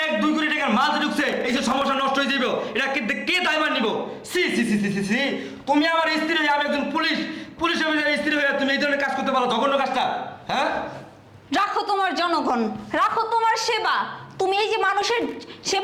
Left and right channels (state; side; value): identical; both; correlation 1.00